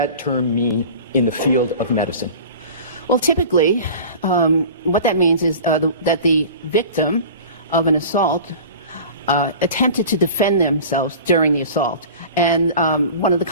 term mean in the field of medicine? Well, typically, what that means is that the victim of an assault attempted to defend themselves during the assault. And one of the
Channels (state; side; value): inverted; both; correlation -0.39